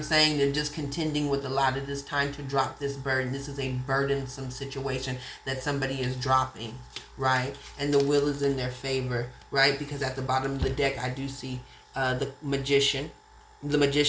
saying. They're just contending with a lot. It is time to drop this burden. This is a burdensome situation that somebody is dropping, right? And the wheel is in their favor, right? Because at the bottom of the deck, I do see the Magician, The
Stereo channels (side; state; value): both; identical; correlation 1.00